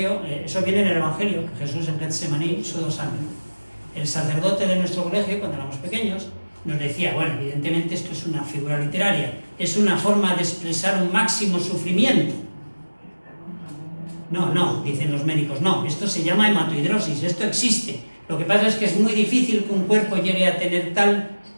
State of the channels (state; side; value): inverted; both; correlation -1.00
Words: eso viene en el Evangelio, que Jesús en Getsemaní sudó sangre. El sacerdote de nuestro colegio, cuando éramos pequeños, nos decía, bueno, evidentemente esto es una figura literaria, es una forma de expresar un máximo sufrimiento. No, dicen los médicos, no, esto se llama hematohidrosis, esto existe. Lo que pasa es que es muy difícil que un cuerpo llegue a tener tal